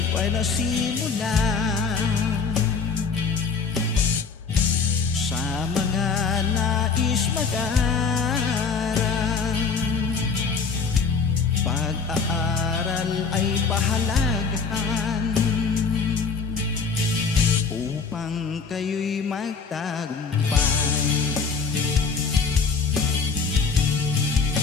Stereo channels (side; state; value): right; quieter; 5.1 dB